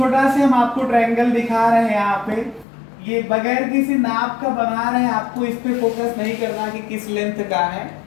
से हम आपको ट्रायंगल दिखा रहे हैं यहाँ पे, ये बगैर किसी नाप का बना रहे हैं, आपको इस पे फोकस नहीं करना कि किस लेंथ का है,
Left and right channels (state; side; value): drops out; right; at 2.7 s